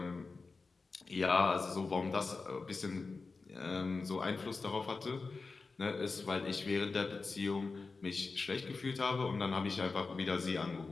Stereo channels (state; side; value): quieter; right; 4.1 dB